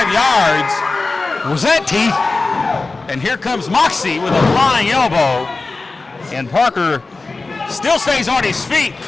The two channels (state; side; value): quieter; right; 3.6 dB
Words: yards. Was that teeth? And here comes Moxie with a flying elbow. And Parker still stays on his feet.